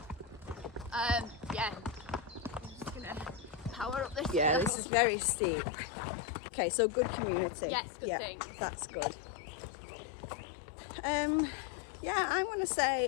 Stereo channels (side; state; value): right; drops out; at 4.7 s